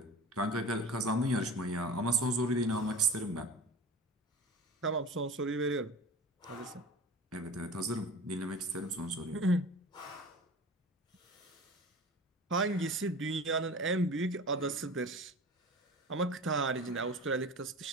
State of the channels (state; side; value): normal; both; correlation 0.35